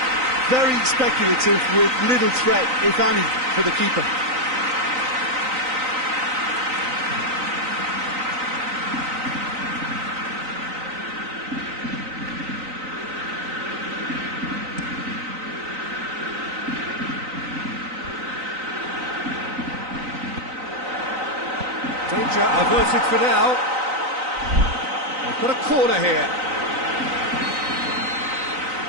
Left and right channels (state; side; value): late; left; 3.9 ms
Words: Very speculative with little threat, if any, for the keeper. Danger averted for now. They've got a corner here.